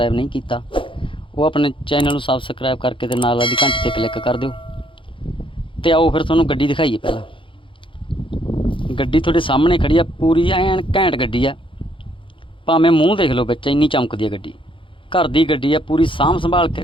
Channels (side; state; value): right; late; 0.25 ms